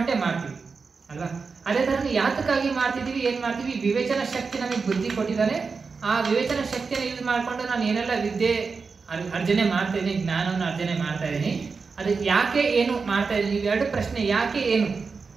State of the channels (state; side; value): quieter; left; 4.8 dB